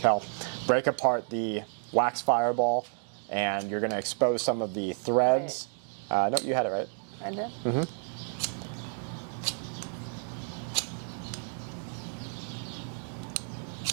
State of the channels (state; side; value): silent; left; 55 dB below the other